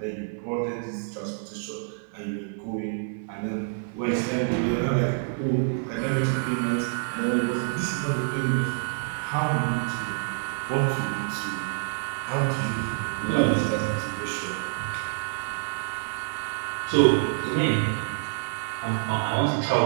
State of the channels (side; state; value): left; silent; 60 dB below the other